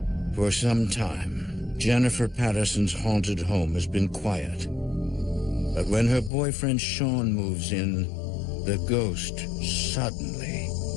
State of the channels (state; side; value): drops out; right; at 6.3 s